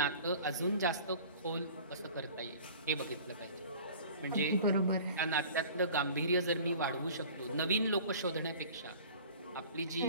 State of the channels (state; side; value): inverted; both; correlation -0.44